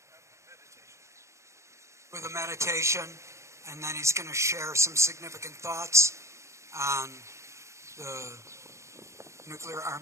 a meditation, and then he's going to share some significant thoughts on the nuclear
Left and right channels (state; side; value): late; left; 0.14 ms